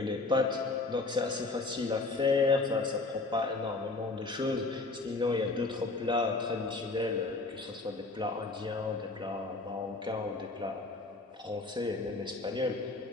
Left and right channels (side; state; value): right; quieter; 3.5 dB